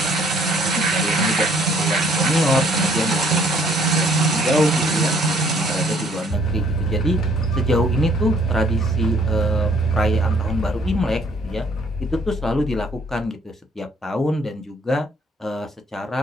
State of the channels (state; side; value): normal; both; correlation 0.63